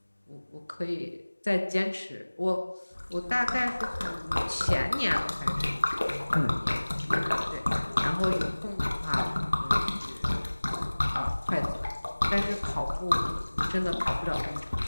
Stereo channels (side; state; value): both; inverted; correlation -1.00